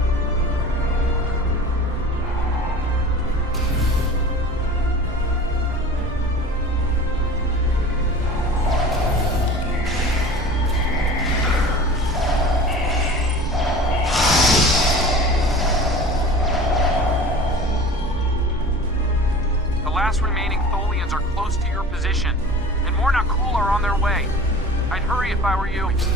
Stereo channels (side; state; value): both; normal; correlation 0.40